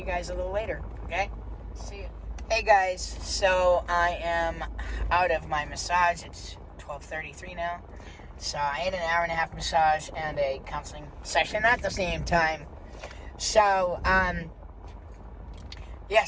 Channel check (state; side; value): identical; both; correlation 1.00